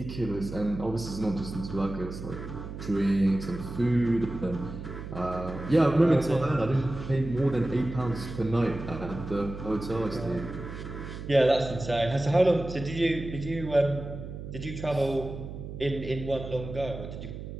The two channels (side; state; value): right; noise; hum, 9 dB below the sound